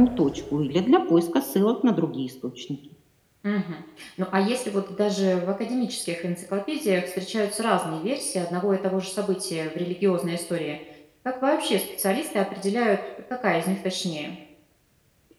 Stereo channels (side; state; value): both; identical; correlation 1.00